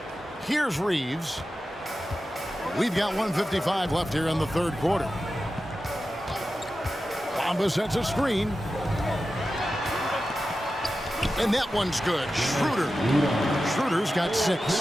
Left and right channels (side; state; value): both; normal; correlation 0.92